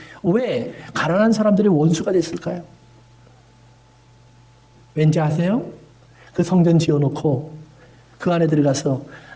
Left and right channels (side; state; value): both; identical; correlation 1.00